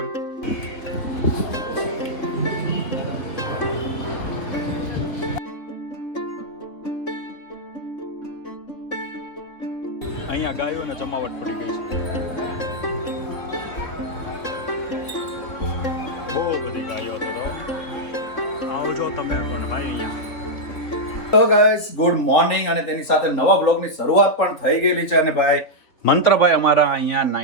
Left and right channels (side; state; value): right; late; 3.4 ms